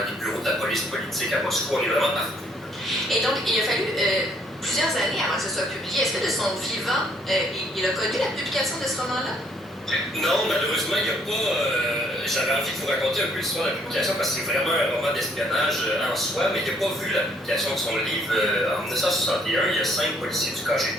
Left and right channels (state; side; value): normal; both; correlation 0.66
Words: bureaux de la police politique à Moscou. On est vraiment partout. Et donc, il a fallu plusieurs années avant que ce soit publié. Est-ce que de son vivant, il a connu la publication de ce roman-là? Non, malheureusement, il n'y a pas. J'avais envie de vous raconter un peu l'histoire de la publication parce que c'est vraiment un roman d'espionnage en soi, mais il n'a pas vu la publication de son livre. En 1961, il y a 5 policiers du